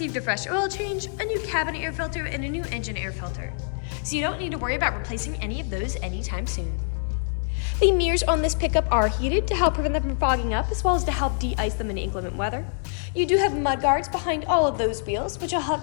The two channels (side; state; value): right; silent; digital silence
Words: a fresh oil change, a new cabin air filter, and a new engine air filter. So you don't need to worry about replacing any of those anytime soon. The mirrors on this pickup are heated to help prevent them from fogging up, as well as to help de-ice them in inclement weather. You do have mud guards behind all of those wheels, which will help